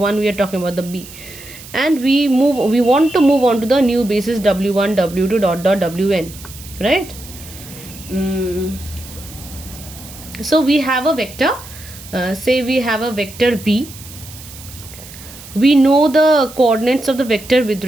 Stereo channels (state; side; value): noise; right; hiss, 17 dB below the sound